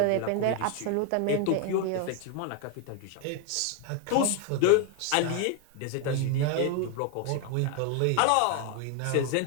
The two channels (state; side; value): different; both; correlation 0.01